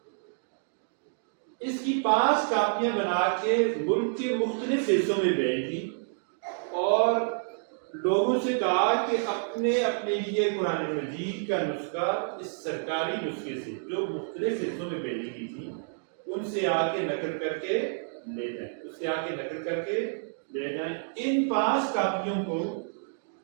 اس کی 5 کاپیاں بنا کے ملک کے مختلف حصوں میں بھیج دی اور لوگوں سے کہا کہ اپنے لیے قرآن مجید کا نسخہ اس سرکاری نسخے سے جو مختلف حصوں میں بھیجی گئی تھی ان سے آ کے نقل کر کے لے جائیں۔ ان 5 کاپیوں کو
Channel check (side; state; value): left; silent; digital silence